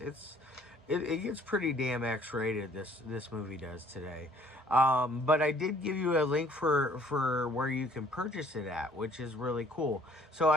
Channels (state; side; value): normal; both; correlation 0.58